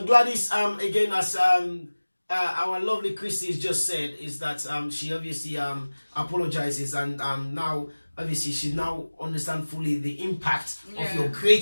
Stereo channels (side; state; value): both; inverted; correlation -1.00